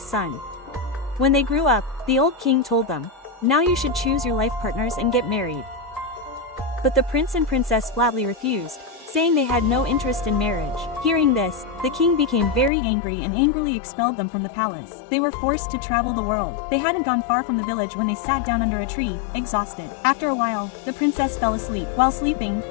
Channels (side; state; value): right; drops out; at 12.7 s